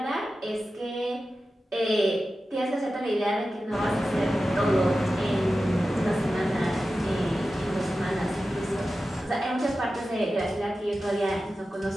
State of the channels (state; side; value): normal; both; correlation 0.93